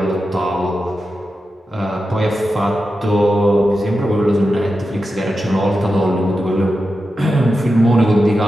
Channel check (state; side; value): normal; both; correlation 0.90